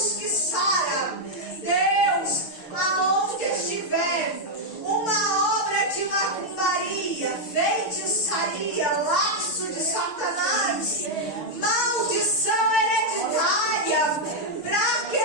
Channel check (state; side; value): late; right; 6.5 ms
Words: que sara. Deus, aonde estiver uma obra de macumbaria, feitiçaria, laço de Satanás, maldição hereditária, para